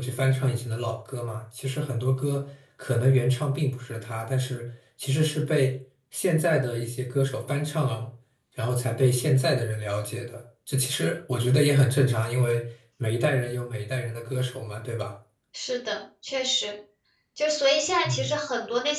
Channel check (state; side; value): identical; both; correlation 1.00